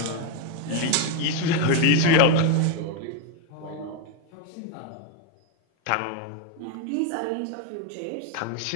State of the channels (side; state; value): both; different; correlation 0.02